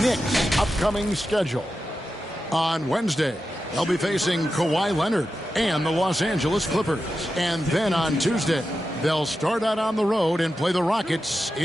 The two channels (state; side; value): normal; both; correlation 0.91